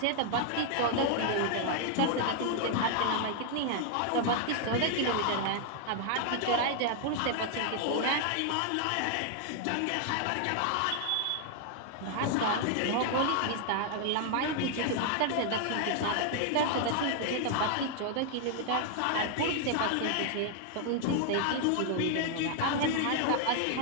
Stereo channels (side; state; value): both; different; correlation 0.00